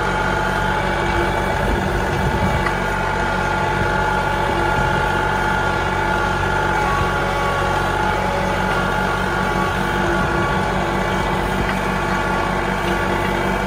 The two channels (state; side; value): identical; both; correlation 1.00